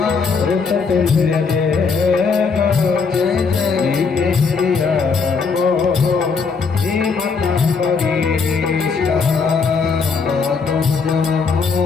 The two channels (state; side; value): quieter; right; 5.1 dB